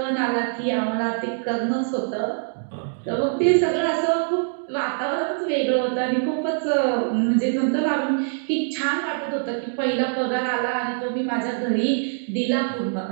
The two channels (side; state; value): left; silent; digital silence